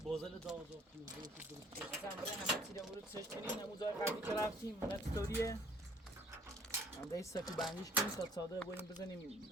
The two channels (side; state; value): both; normal; correlation 0.58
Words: بازل داو مثلا برای همه چیز رو سرچ کنین همون جای قبلی که رفتیم اون استوریه من دایی سفی بندیش کنیم تا صادره بریم